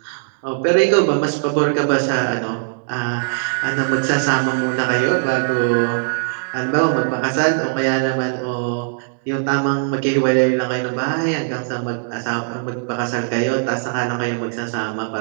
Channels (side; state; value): left; silent; digital silence